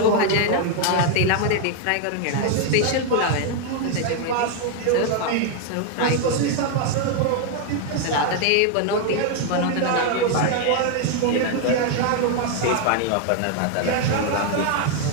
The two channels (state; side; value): different; both; correlation 0.01